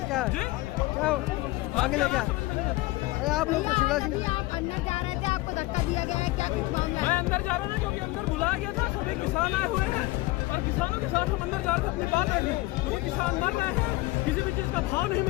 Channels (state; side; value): quieter; right; 19.9 dB